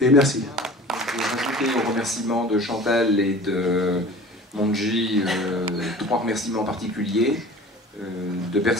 merci. Je vais rajouter aux remerciements de Chantal et de Monji 3 remerciements particuliers de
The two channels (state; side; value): normal; both; correlation 0.42